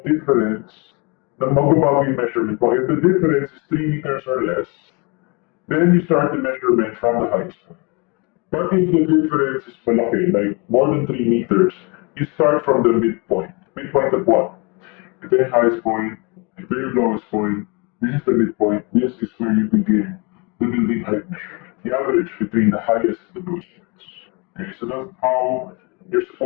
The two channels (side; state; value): right; quieter; 30.3 dB